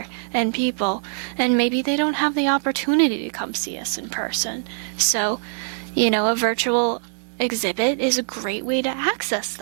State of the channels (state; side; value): silent; left; digital silence